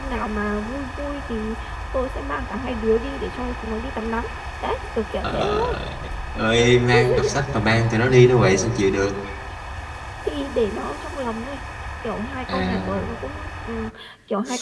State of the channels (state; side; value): identical; both; correlation 1.00